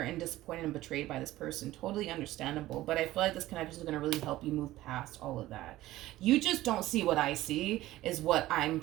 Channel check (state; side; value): quieter; left; 16.1 dB